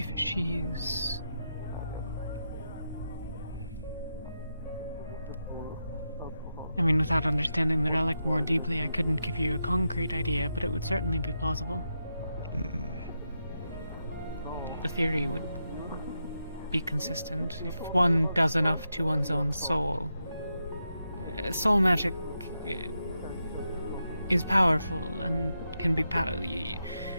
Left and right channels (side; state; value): both; inverted; correlation -0.86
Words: she's... I mean, without understanding the relic more deeply, I couldn't give you a concrete idea, but it would certainly be plausible. The theory would be consistent. If one does enough to one's own soul, soul magic is powerful and can be